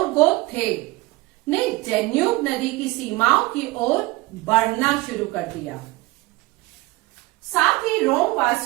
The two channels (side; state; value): left; quieter; 21.2 dB